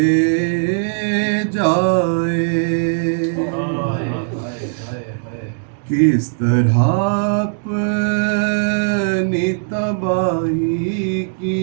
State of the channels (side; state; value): left; silent; 67 dB below the other